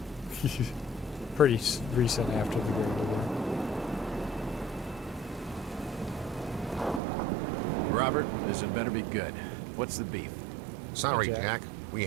Pretty recent after the Great War. Robert, this had better be good. What's the beef? Sorry, Hi, Jack. Jack. We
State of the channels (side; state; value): left; drops out; at 7.0 s